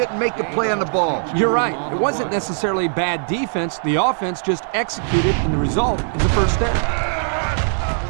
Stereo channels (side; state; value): left; silent; 66 dB below the other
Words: make the play on the ball. You're right. It wasn't necessarily bad defense. The offense just executed, and the result is a first down.